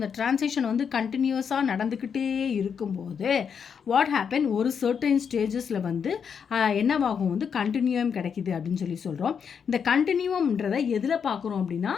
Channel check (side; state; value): right; quieter; 6.9 dB